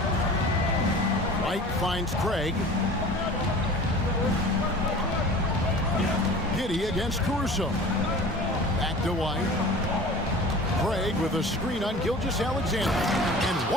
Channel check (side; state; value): both; normal; correlation 0.40